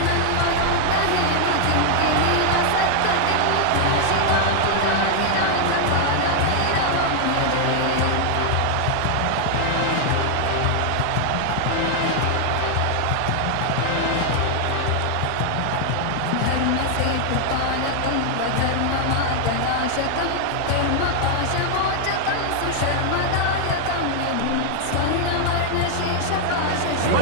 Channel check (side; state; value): both; different; correlation 0.00